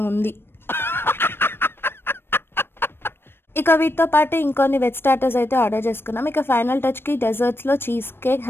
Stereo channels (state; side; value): late; right; 0.11 ms